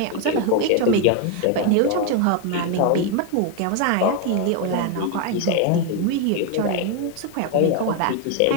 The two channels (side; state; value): both; different; correlation 0.01